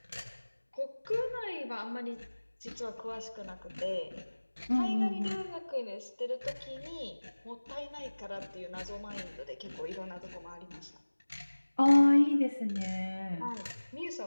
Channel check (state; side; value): inverted; both; correlation -1.00